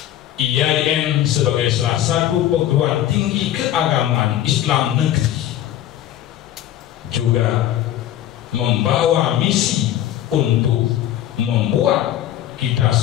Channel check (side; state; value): right; quieter; 12.2 dB